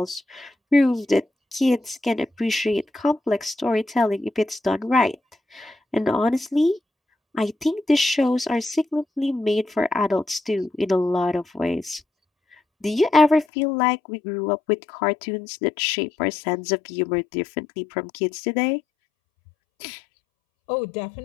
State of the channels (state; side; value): drops out; right; at 13.5 s